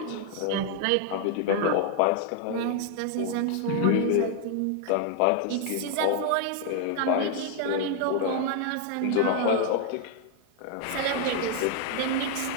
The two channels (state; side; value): different; both; correlation 0.00